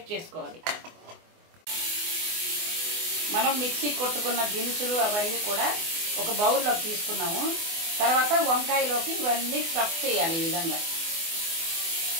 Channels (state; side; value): late; left; 24 ms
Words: చేసుకోవాలి. మనం మిక్సీ కొట్టుకున్న దినుసులు అవన్నీ కూడా ఒక బౌల్లోకి తీసుకున్నాము. తర్వాత వంకాయలోకి ఇవన్నీ స్టఫ్ చేయాలి. ఈ విధంగా